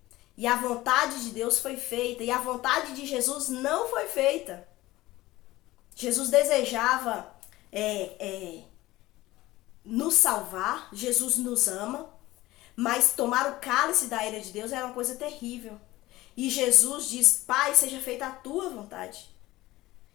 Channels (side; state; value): right; quieter; 17.8 dB